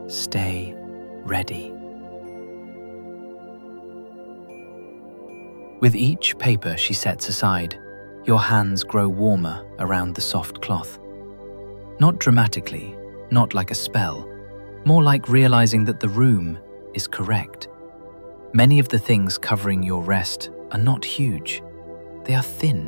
stay ready." With each paper she sets aside, your hands grow warmer around the soft cloth. Not dramatically, not like a spell, More like realizing that the room is correct. Many of the things covering your rest are not huge. They are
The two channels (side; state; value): both; inverted; correlation -1.00